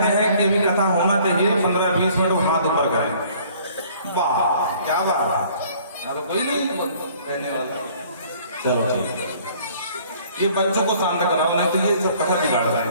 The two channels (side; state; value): both; inverted; correlation -0.56